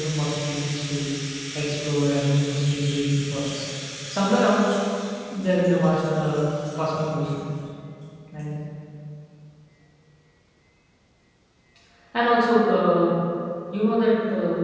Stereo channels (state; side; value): identical; both; correlation 1.00